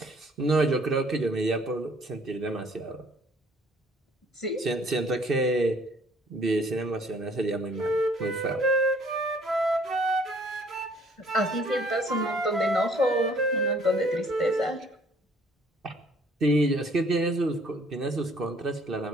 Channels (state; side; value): normal; both; correlation 0.59